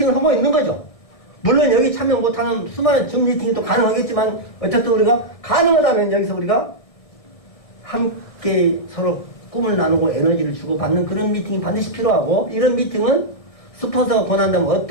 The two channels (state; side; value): late; right; 1.6 ms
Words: 하고 있는 거죠. 물론 여기 참여 못하는 수많은 줌 미팅도 가능하겠지만 어쨌든 우리가 가능하다면 여기서 우리가 함께 서로 꿈을 나누고 에너지를 주고받는 그런 미팅이 반드시 필요하고 이런 미팅은 스폰서가 권한다면